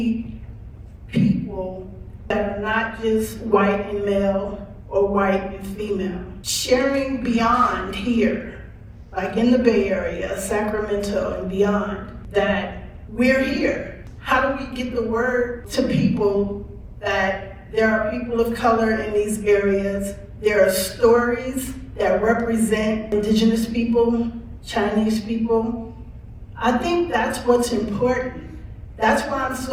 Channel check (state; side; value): identical; both; correlation 1.00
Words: people that are not just white and male or white and female, sharing beyond here, like in the Bay Area, Sacramento and beyond, that we're here. How do we get the word to people that there are people of color in these areas? There are stories that represent indigenous people, Chinese people. I think that's what's important. That's why I'm